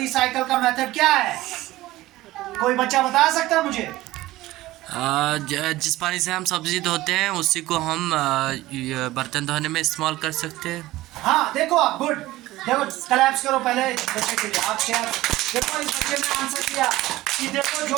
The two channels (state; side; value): quieter; left; 17.2 dB